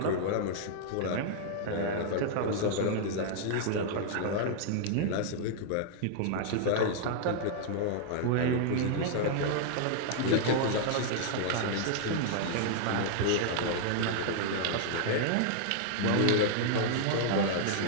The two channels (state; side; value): different; both; correlation -0.01